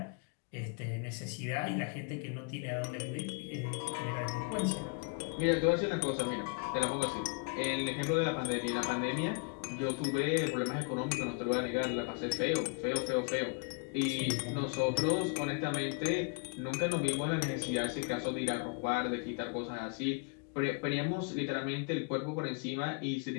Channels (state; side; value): quieter; right; 35.0 dB